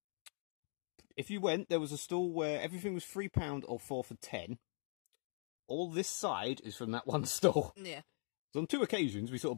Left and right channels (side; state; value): right; silent; 50 dB below the other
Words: If you went, there was a stall where everything was £3 or 4 for 10. All this side is from that one stall. Yeah. So on 2 occasions, we sort